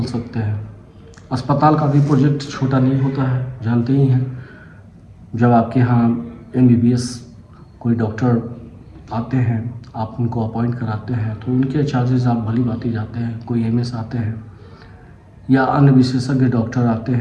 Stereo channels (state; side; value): identical; both; correlation 1.00